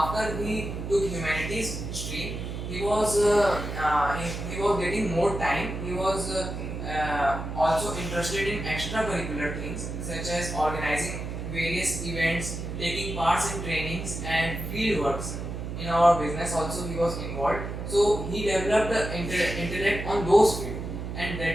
he took humanities stream, he was getting more time. He was also interested in extracurricular things such as organizing various events, taking parts in trainings and field works. In our business also he was involved. So he developed the intellect on those fields, and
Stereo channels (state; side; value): noise; right; hum, 6 dB below the sound